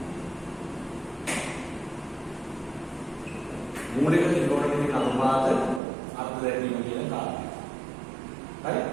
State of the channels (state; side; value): drops out; left; at 5.8 s